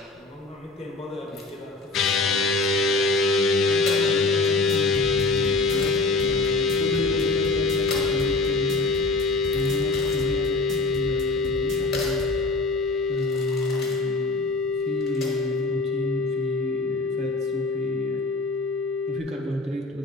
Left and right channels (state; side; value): quieter; right; 3.3 dB